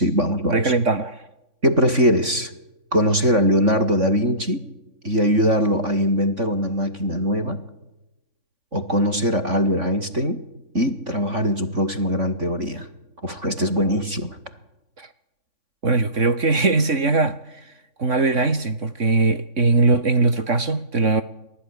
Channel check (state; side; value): late; left; 3.5 ms